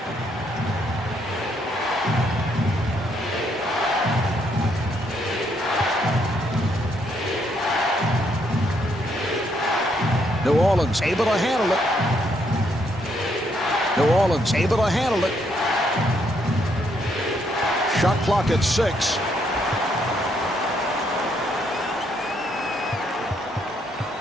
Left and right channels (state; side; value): normal; both; correlation 0.73